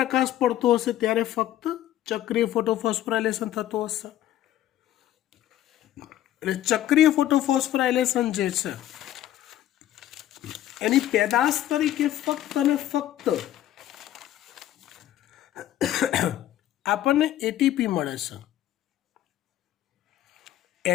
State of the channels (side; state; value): right; quieter; 12.7 dB